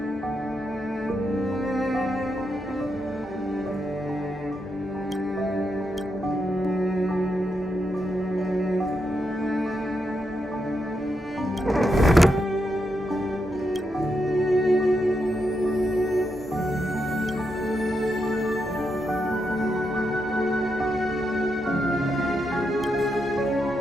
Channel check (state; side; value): normal; both; correlation 0.83